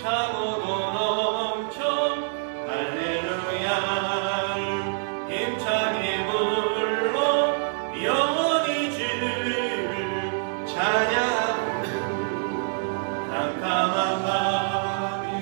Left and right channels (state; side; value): silent; left; digital silence